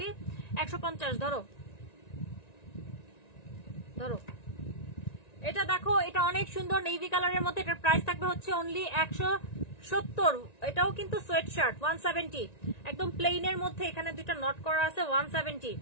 150 ধরো ধরো। এটা দেখো, এটা অনেক সুন্দর নেভি কালারের মধ্যে। এটার প্রাইস থাকবে হচ্ছে অনলি 170। এটাও কিন্তু সোয়েট শার্ট 170, একদম প্লেনের মধ্যে। এখানে দুইটা নট করা আছে 170।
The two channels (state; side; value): late; right; 1.9 ms